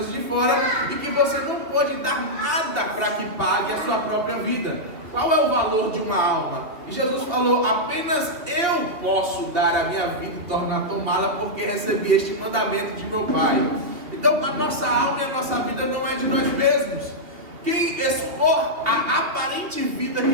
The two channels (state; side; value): late; left; 2.6 ms